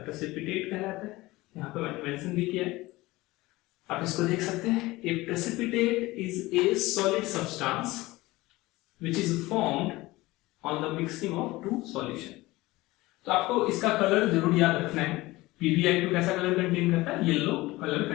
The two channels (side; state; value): right; quieter; 19.8 dB